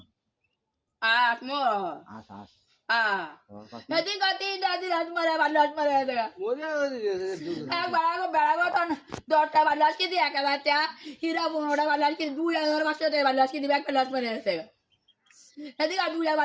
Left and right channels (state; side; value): identical; both; correlation 1.00